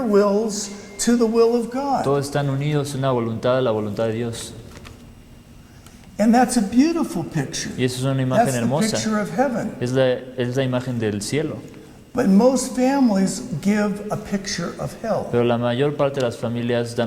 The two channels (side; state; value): both; identical; correlation 1.00